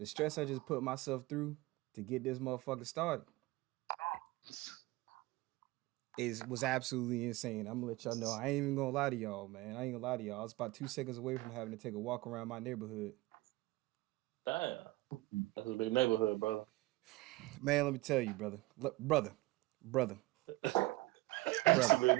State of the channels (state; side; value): quieter; left; 20.2 dB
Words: stress I just put myself through to get this motherfucker started was absolutely insane. I'm gonna let y'all know. I ain't even gonna lie to y'all, man. I was about 2 seconds away from having to take a walk around my neighborhood. Damn. That's a big neighborhood, bro. Man, let me tell you, brother. Brother. That's a big